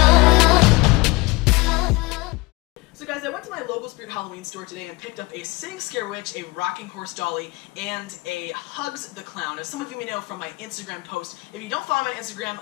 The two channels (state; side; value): quieter; right; 24.2 dB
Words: So guys, I went to my local Spirit Halloween store today and picked up a Sitting Scare Witch, a rocking horse dolly, and a Hugs the Clown. As some of you may know from my Instagram post, if you don't follow my Instagram,